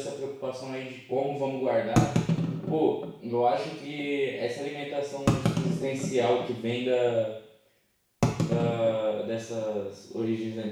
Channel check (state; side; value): identical; both; correlation 1.00